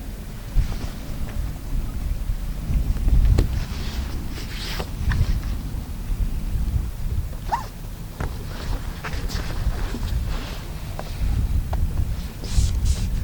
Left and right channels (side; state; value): both; identical; correlation 1.00